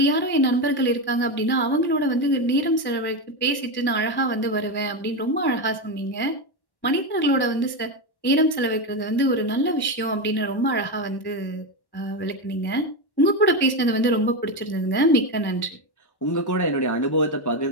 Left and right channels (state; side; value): late; right; 1.1 ms